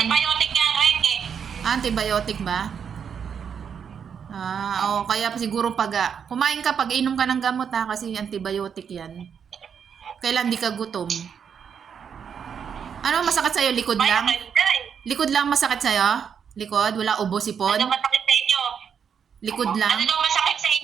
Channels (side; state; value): left; quieter; 7.3 dB